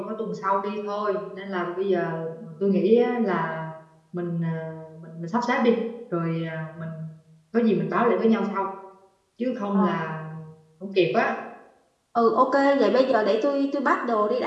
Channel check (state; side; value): identical; both; correlation 1.00